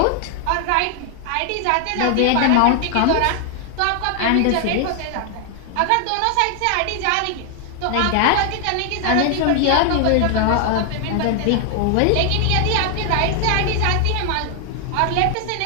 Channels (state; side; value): different; both; correlation 0.00